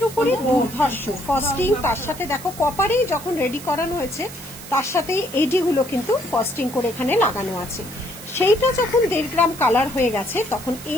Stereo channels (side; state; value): right; noise; hiss, 15 dB below the sound